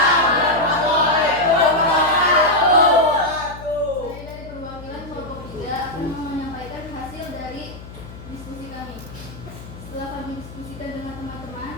warahmatullahi wabarakatuh. Saya dari perwakilan kelompok 3 akan menyampaikan hasil dari diskusi kami. Setelah kami diskusikan dengan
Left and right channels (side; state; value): left; noise; hum, 15 dB below the sound